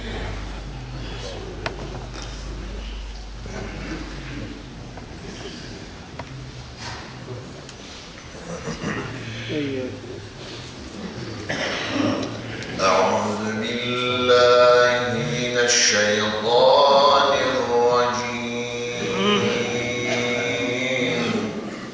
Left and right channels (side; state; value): both; identical; correlation 1.00